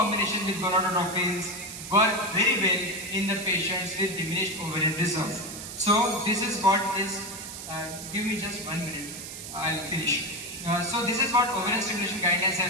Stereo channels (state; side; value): noise; right; hiss, 10 dB below the sound